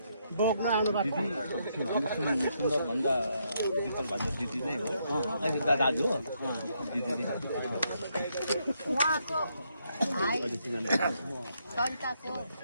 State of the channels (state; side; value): inverted; both; correlation -0.77